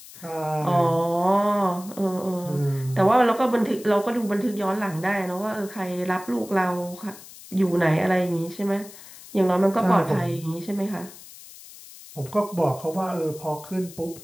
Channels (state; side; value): noise; left; hiss, 18 dB below the sound